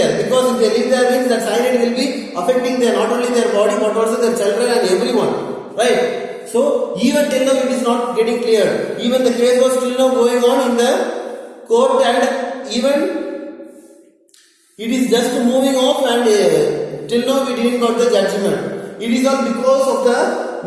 because if they live there means that cyanide will be affecting not only their body but also their children and everyone, right? So even till now it is not getting cleared. Even the case was still now going on in the court, and even it is just moving off, and till now we didn't got the judgment. It is all because of the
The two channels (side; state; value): both; identical; correlation 1.00